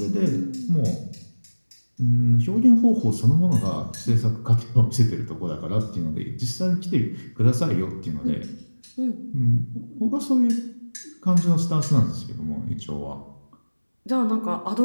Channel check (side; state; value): both; inverted; correlation -1.00